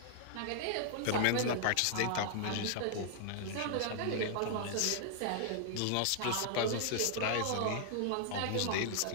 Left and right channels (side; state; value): both; different; correlation -0.01